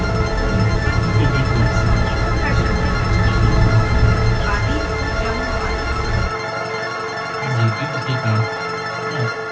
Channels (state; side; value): identical; both; correlation 1.00